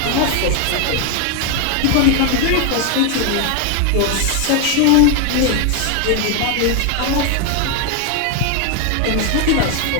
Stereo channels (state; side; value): different; both; correlation 0.01